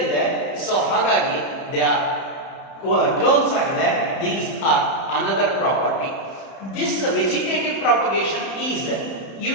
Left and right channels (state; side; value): late; right; 31 ms